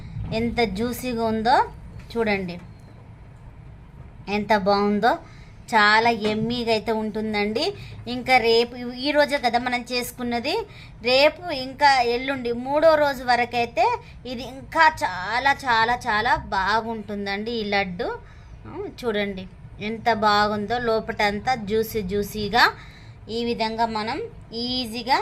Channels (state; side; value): identical; both; correlation 1.00